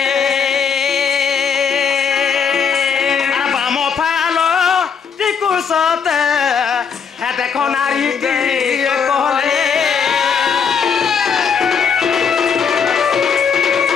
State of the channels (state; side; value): quieter; right; 6.5 dB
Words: সতে হে দেখো নারী কহলে